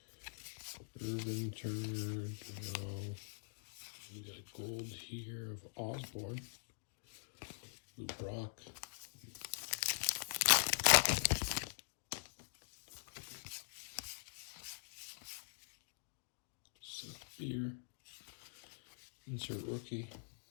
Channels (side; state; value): right; silent; digital silence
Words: Irvin, Turner, DeJong. We got a gold here of Osborne. Lou Brock. Seth Beer. Insert rookie.